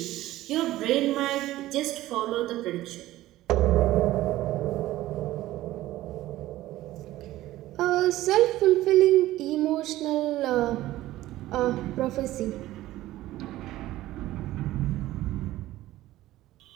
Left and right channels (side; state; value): left; quieter; 15.7 dB